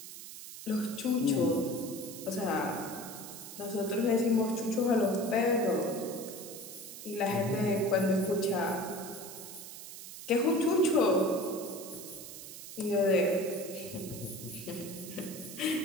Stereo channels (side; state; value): right; noise; hiss, 12 dB below the sound